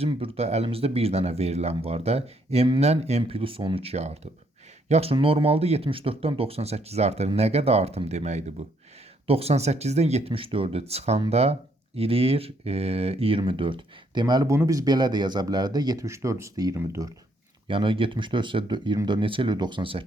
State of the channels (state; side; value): normal; both; correlation 0.71